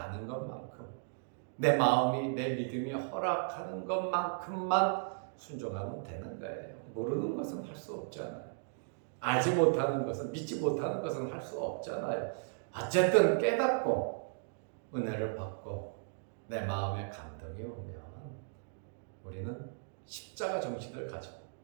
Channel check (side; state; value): left; silent; digital silence